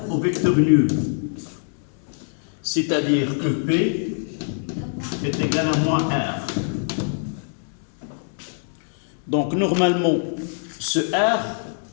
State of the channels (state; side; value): silent; right; digital silence